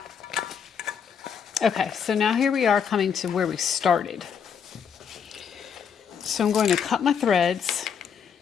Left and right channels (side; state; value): right; quieter; 7.2 dB